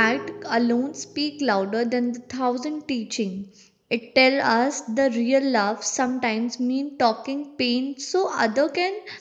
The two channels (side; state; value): both; identical; correlation 1.00